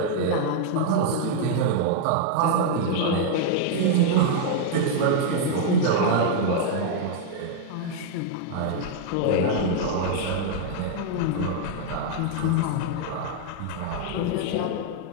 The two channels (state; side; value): different; both; correlation -0.01